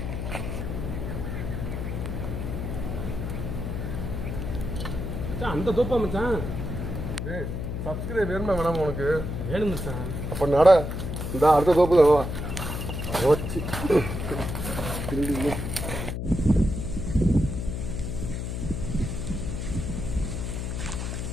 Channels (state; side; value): noise; left; hum, 4 dB below the sound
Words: மச்சான் அந்த தோப்பா மச்சான்? டேய், சப்ஸ்கிரைப் வேணுமா வேணாமா உனக்கு? வேணும் மச்சான். அப்போ நட, இந்த அடுத்த தோப்பு தான் வா. ஓச்சி